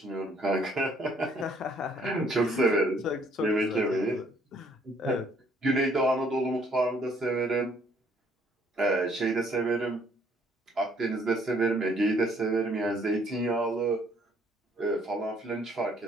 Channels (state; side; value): normal; both; correlation 0.64